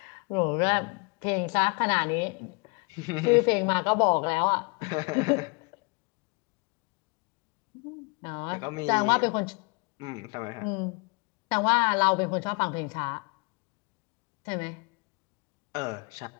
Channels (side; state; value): right; quieter; 31.6 dB